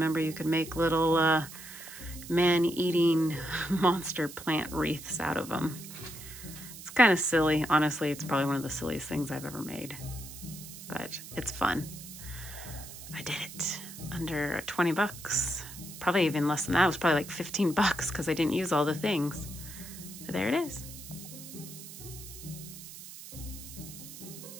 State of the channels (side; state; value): right; noise; hiss, 13 dB below the sound